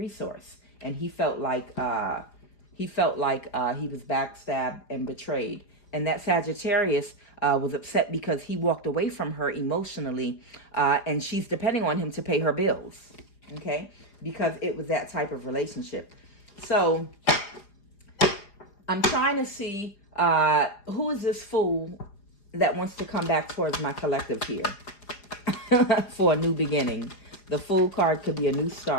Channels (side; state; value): right; late; 4.9 ms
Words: And he felt like he was backstabbed and betrayed. And that Sagittarius was upset because he walked away from her emotionally, and she's depending on him to pay her bills, okay? Because it was that type of relationship. So I'm trying to see who is this fool that wants to come back towards my collective here for a new beginning. The Fool card could be a new